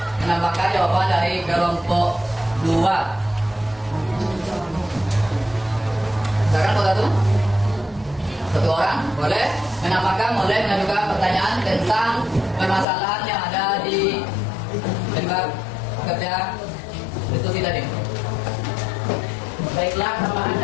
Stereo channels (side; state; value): right; drops out; at 12.9 s